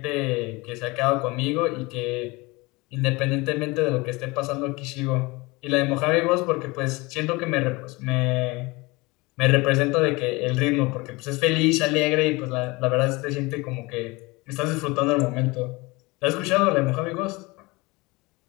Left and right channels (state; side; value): quieter; right; 23.9 dB